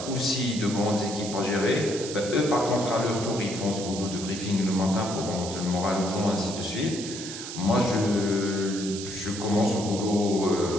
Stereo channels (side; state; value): right; noise; hiss, 9 dB below the sound